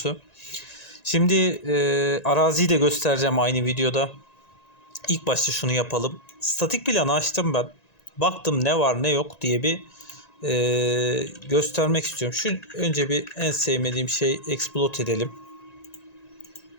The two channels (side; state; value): right; late; 1.9 ms